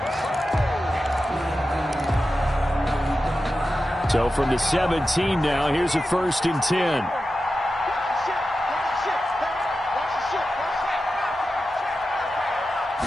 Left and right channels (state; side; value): normal; both; correlation 0.92